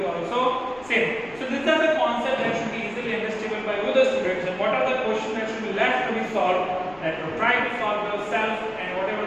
also same. So these are the concepts that should be easily understandable by all the students. And what are the questions that should be left to be solved? That you try to solve yourself, and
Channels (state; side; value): noise; left; rumble, 24 dB below the sound